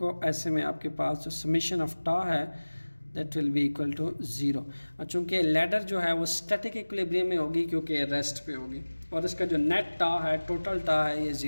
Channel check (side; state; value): both; inverted; correlation -1.00